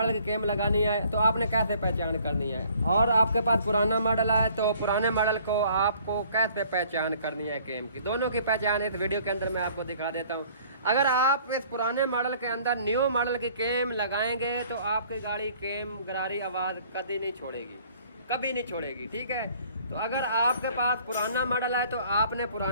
की केम लगानी है, तो आपने कैसे पहचान करनी है, और आपके पास पुराना मॉडल है तो पुराने मॉडल को आपको कैसे पहचान करनी है केम की। दोनों की पहचान इस वीडियो के अंदर मैं आपको दिखा देता हूँ। अगर आप इस पुराने मॉडल के अंदर न्यू मॉडल की केम लगाएंगे तो आपकी गाड़ी केम गरारी आवाज़ कभी नहीं छोड़ेगी, कभी नहीं छोड़ेगी, ठीक है। तो अगर आपके पास पुराना मॉडल है तो आपने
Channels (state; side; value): inverted; both; correlation -0.56